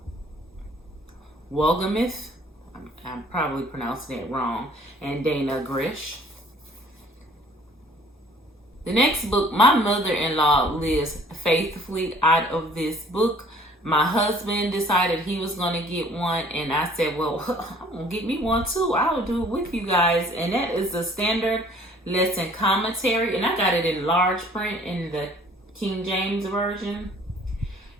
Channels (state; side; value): normal; both; correlation 0.54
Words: Wolgamuth. I'm probably pronouncing it wrong. And Dana Grish. The next book, my mother-in-law lives faithfully out of this book. My husband decided he was going to get one, and I said, well, I'm going to get me one too. I'll do it with you guys. And that is the Standard Lesson Commentary, and I got it in large print in the King James Version.